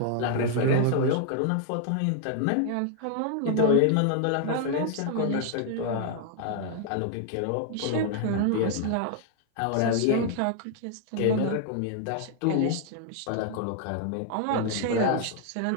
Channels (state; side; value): different; both; correlation 0.00